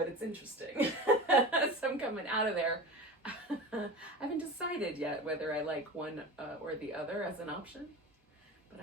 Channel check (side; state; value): both; normal; correlation 0.31